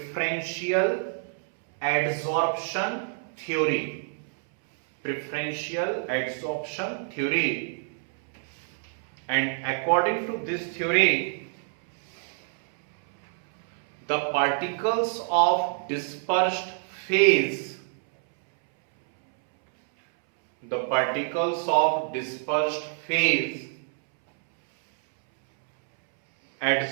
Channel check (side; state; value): left; silent; 60 dB below the other